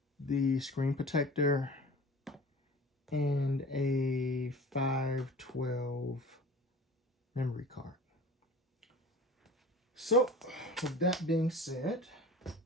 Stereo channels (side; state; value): both; normal; correlation 0.40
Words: the screen protector, and a 512 memory card. So with that being said,